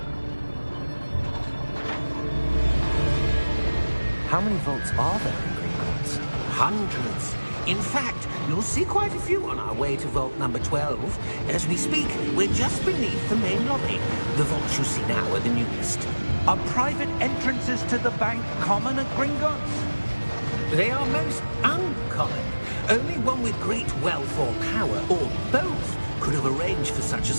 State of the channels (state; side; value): inverted; both; correlation -1.00